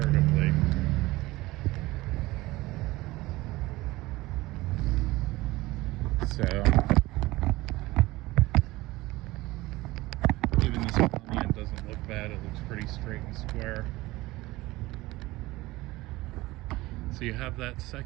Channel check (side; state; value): left; quieter; 19.5 dB